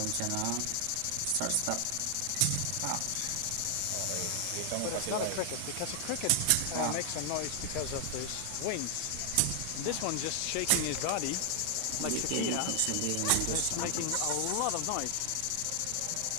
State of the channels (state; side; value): different; both; correlation 0.00